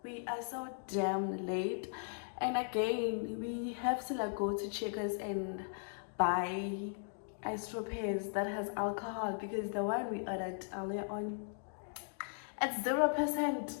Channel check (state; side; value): silent; right; digital silence